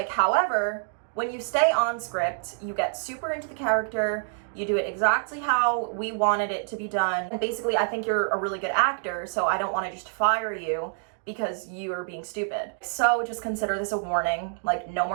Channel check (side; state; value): left; silent; digital silence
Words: however, when you stay on script, you get super into the character, you do it exactly how we wanted it to be done. And basically, I think you're a really good actor, so I don't want to just fire you because you are being stupid. So just consider this a warning. Like, no